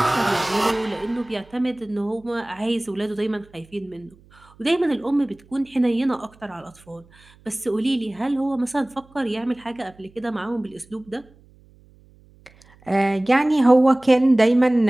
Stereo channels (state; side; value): noise; right; hum, 28 dB below the sound